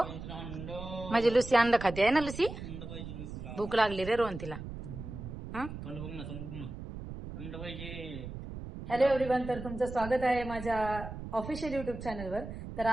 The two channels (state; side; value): noise; right; rumble, 9 dB below the sound